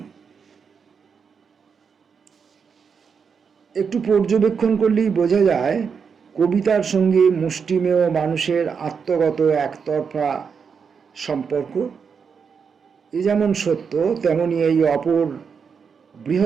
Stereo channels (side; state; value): left; quieter; 6.2 dB